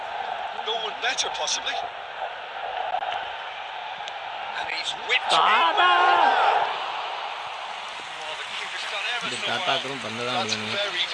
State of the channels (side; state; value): both; identical; correlation 1.00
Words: go one better, possibly. And he's whipped it. Tata! Well, the keeper's done ever so well. That's very,